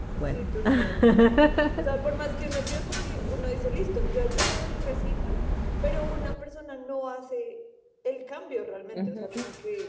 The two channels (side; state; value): both; identical; correlation 1.00